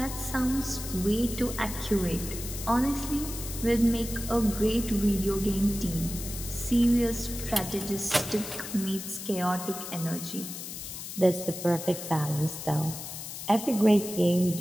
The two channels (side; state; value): left; noise; hiss, 9 dB below the sound